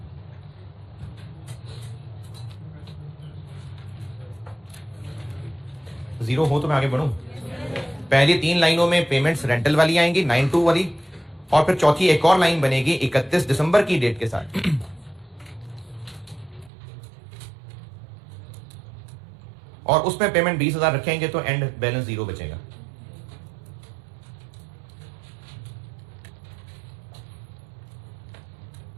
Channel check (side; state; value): left; drops out; at 16.7 s